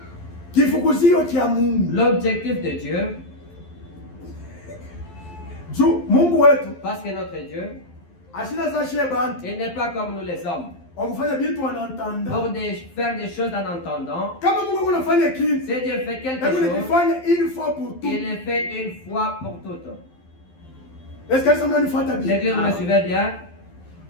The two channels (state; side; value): late; right; 12 ms